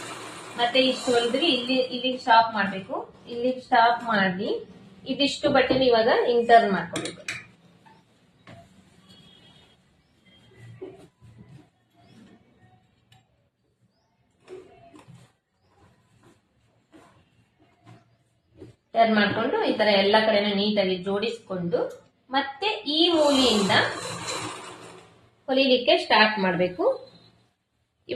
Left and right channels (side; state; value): both; identical; correlation 1.00